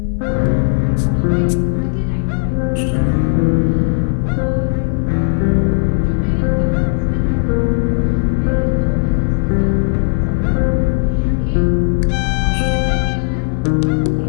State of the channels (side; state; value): right; silent; 59 dB below the other